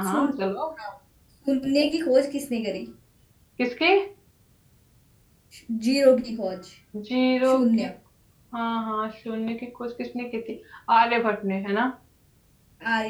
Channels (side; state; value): both; identical; correlation 1.00